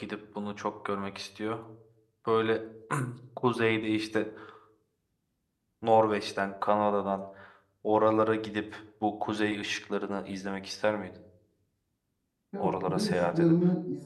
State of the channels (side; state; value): both; identical; correlation 1.00